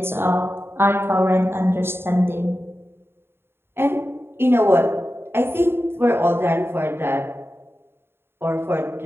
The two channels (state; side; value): late; left; 0.11 ms